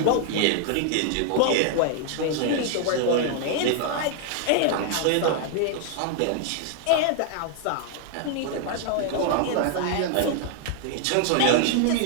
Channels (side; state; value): both; different; correlation 0.00